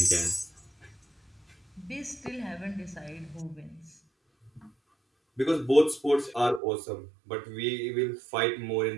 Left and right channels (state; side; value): drops out; left; at 6.6 s